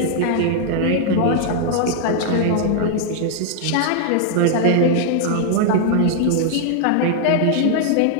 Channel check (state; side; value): different; both; correlation 0.00